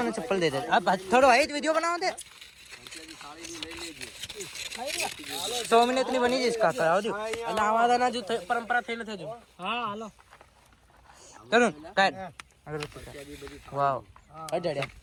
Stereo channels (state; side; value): identical; both; correlation 1.00